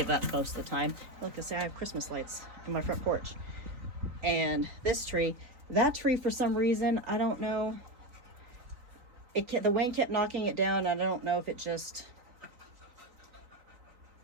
up most of the time. Look, I say I have Christmas lights on my front porch. And this tree, that tree, for some reason, I don't know. The wind kept knocking it down. I don't know if it just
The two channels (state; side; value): late; left; 4.1 ms